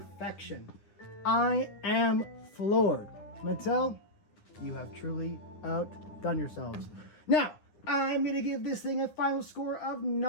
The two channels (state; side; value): late; right; 9.9 ms